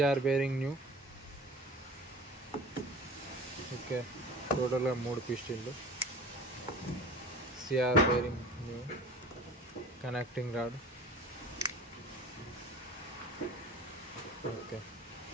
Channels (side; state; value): both; normal; correlation 0.40